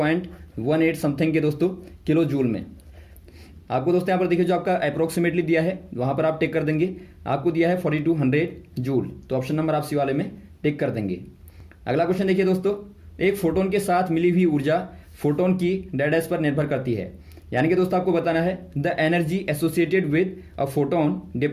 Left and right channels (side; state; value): both; identical; correlation 1.00